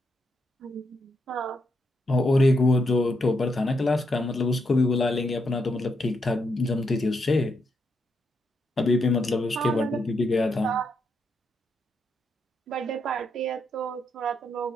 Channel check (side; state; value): both; normal; correlation 0.80